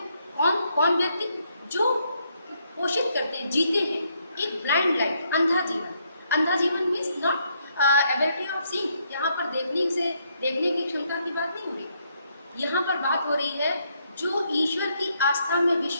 कौन व्यक्ति जो पोषित करते हैं, जीते हैं एक ब्लाइंड लाइफ, अंधा जीवन. अंधा जीवन means not ability of seeing. यहाँ पर देखने की क्षमता की बात नहीं हो रही. यहाँ पर बात हो रही है जो ईश्वर की आस्था में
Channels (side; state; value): both; inverted; correlation -0.74